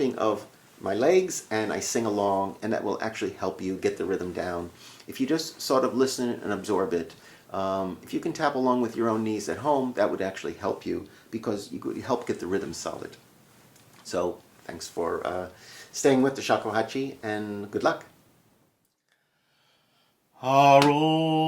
of my legs, and I sing along, and that will actually help you get the rhythm down. If you just sort of listen and absorb it, if you can tap along with your own knees at home, that would actually help you, because you could help get the rhythm solid. So thanks for staying with the shakuhachi, and good luck. Haro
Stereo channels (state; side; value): identical; both; correlation 1.00